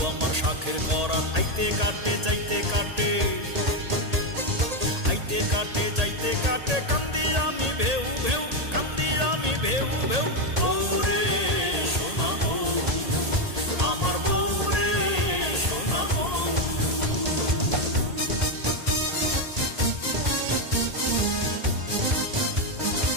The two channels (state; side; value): late; left; 1.8 ms